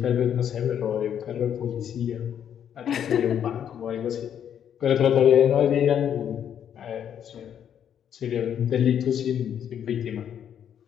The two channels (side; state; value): right; quieter; 9.1 dB